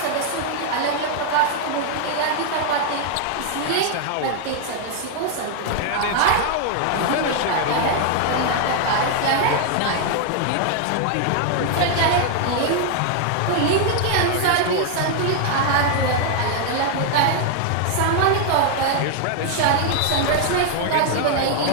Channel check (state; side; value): different; both; correlation 0.00